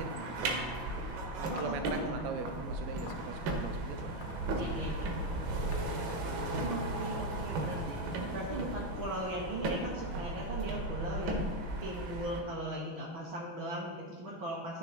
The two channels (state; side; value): late; left; 6.1 ms